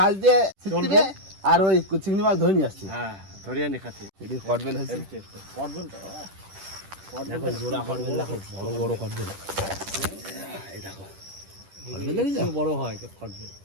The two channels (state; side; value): late; left; 10 ms